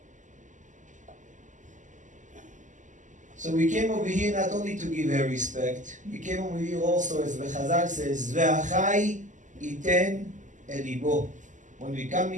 So we came over here not only to give her respect, we came over here also, as the Chazal says, ve'achai iten elibo. When we come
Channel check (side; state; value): left; late; 0.37 ms